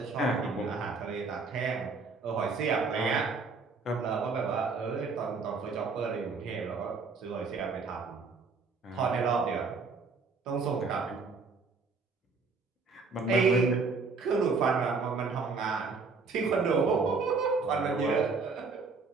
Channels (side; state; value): left; quieter; 4.4 dB